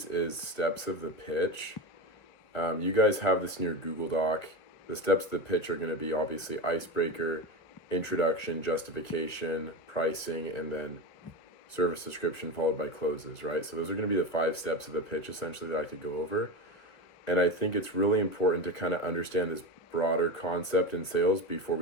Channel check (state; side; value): late; right; 2.5 ms